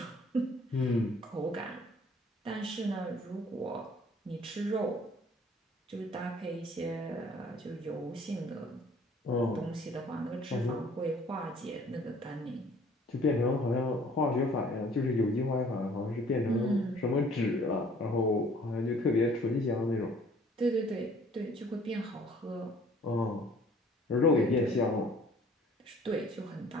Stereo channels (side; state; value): both; normal; correlation 0.55